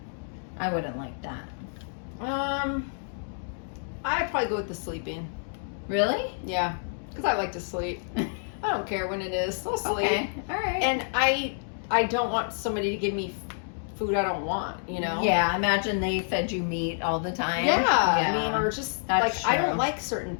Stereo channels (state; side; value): silent; right; digital silence